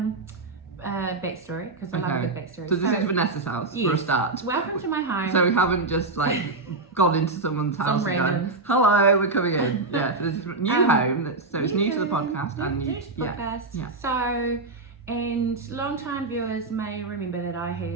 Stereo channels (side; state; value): left; quieter; 3.5 dB